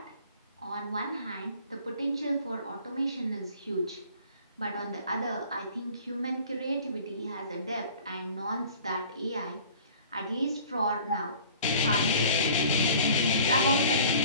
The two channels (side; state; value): both; inverted; correlation -0.47